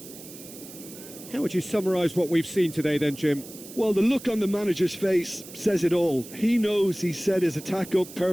How would you summarise what we've seen today then, Jim? Well, the look on the manager's face says it all. He knows he set his attack up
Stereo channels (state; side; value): noise; right; hiss, 16 dB below the sound